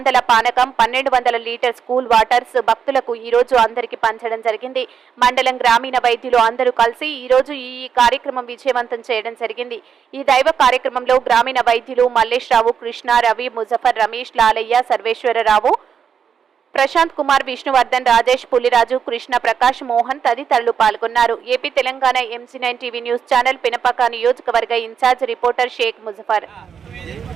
పానకం, 1200 లీటర్ స్కూల్ వాటర్స్ భక్తులకు ఈ రోజు అందరికి పంచడం జరిగింది. మండలం గ్రామీణ వైద్యులు అందరూ కలిసి ఈ రోజు ఈ కార్యక్రమం విజయవంతం చేయడం జరిగింది. ఈ దైవ కార్యక్రమంలో గ్రామీణ వైద్యులు మల్లేష్ రావు, కృష్ణ, రవి, ముజఫర్, రమేష్, లాలయ్య, సర్వేశ్వరరావు, ప్రశాంత్ కుమార్, విష్ణువర్ధన్, రాజేష్, పులిరాజు, కృష్ణ, ప్రకాష్, మోహన్ తదితరులు పాల్గొన్నారు. AP Telangana MG9 TV news channel Pinapaka నియోజకవర్గ ఇన్ఛార్జ్ రిపోర్టర్ షేక్ ముజఫర్.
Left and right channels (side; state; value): left; quieter; 7.3 dB